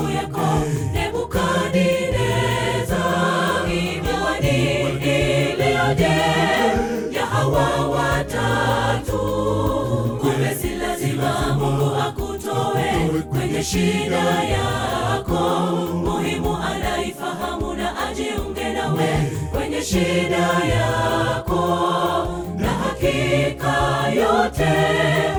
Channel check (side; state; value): both; identical; correlation 1.00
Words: yako Nebukadneza. Miwani iliyoje ya hawa watatu, kumbe si lazima Mungu akutoe kwenye shida yako. Muhimu anaifahamu na ajiunge nawe kwenye shida yako, na hakika yote